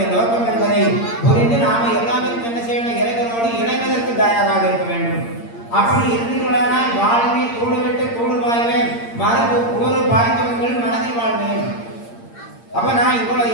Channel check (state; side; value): late; right; 8.7 ms